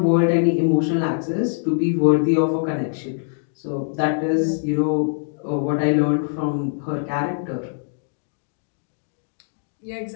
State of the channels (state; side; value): silent; right; digital silence